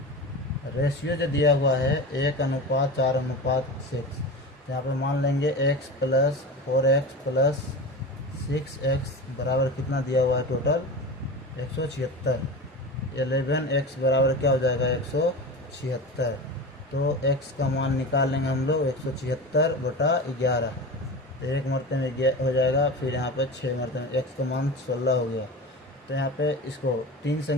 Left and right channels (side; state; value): both; normal; correlation 0.29